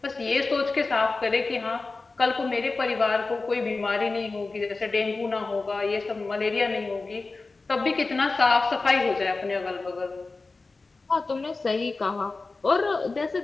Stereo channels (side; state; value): right; quieter; 3.7 dB